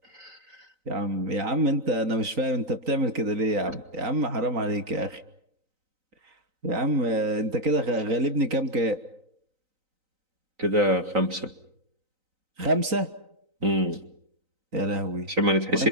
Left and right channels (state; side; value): late; left; 3.9 ms